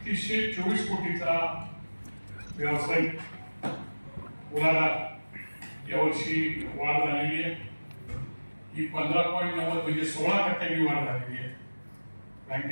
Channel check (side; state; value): both; inverted; correlation -1.00